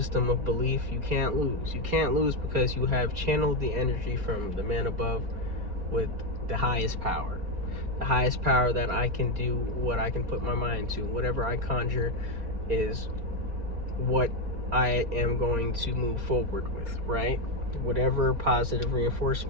of belief, you can't lose because you have channeled the energy from the man above with the highest power that I can do what I can put my mind to. Whatever I conjure is what I am going to move forward with, right? Whatever positive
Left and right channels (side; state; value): left; late; 4.3 ms